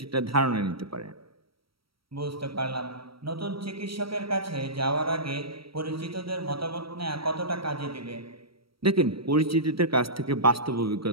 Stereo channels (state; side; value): late; left; 0.75 ms